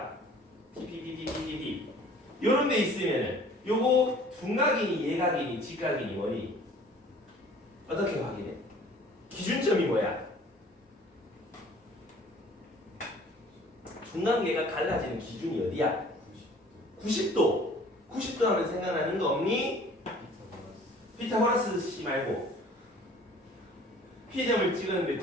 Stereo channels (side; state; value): both; normal; correlation 0.51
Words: P 요런 데 있으면은 요거 둔각이니 예각이니 직각이니 뭐니? 어떻게 확인해? 기준점이 뭐야? 둔각예각 갈라지는 기준이 어디야? 90도. 90도 하면 생각나는 거 없니? 피타고라스 씨 말고 P점을 찍었는데